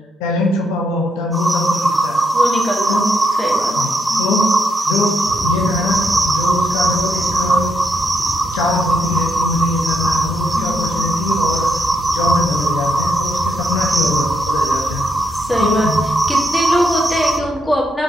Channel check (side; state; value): both; normal; correlation 0.78